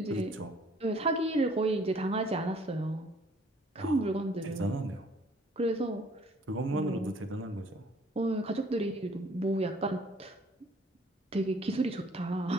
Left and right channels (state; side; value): normal; both; correlation 0.58